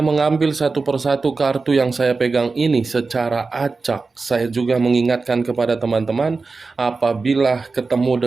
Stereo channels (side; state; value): left; quieter; 4.1 dB